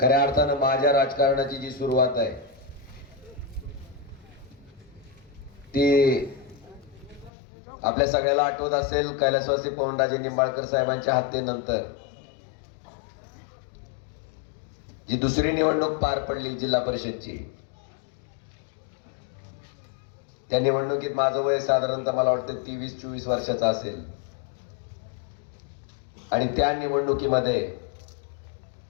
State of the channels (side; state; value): right; drops out; at 7.3 s